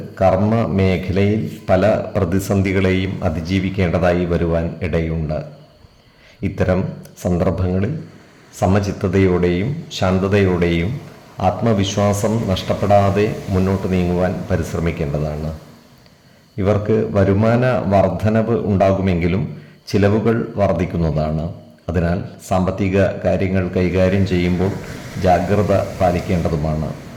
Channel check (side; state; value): both; identical; correlation 1.00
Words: കർമ്മ മേഖലയിൽ പല പ്രതിസന്ധികളെയും അതിജീവിക്കേണ്ടതായി വരുവാൻ ഇടയുണ്ട്. ഇത്തരം സന്ദർഭങ്ങളിൽ സമചിത്തതയോടെയും ശാന്തതയോടെയും ആത്മവിശ്വാസം നഷ്ടപ്പെടാതെ മുന്നോട്ട് നീങ്ങുവാൻ പരിശ്രമിക്കേണ്ടതാണ്. ഇവർക്ക് വരുമാന വർധനവ് ഉണ്ടാകുമെങ്കിലും ചിലവുകൾ വർദ്ധിക്കുന്നതാണ്. അതിനാൽ സാമ്പത്തിക കാര്യങ്ങൾ കൈകാര്യം ചെയ്യുമ്പോൾ ജാഗ്രത പാലിക്കേണ്ടതുമാണ്.